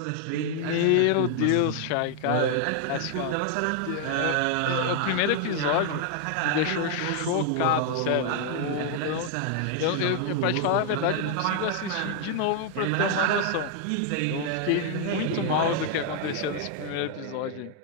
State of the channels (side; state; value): both; different; correlation 0.00